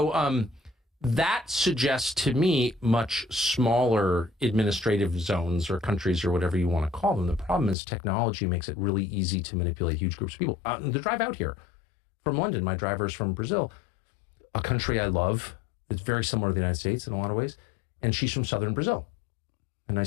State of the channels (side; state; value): right; drops out; at 7.8 s